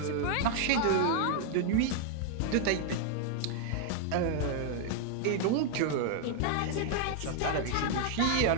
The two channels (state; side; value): different; both; correlation 0.00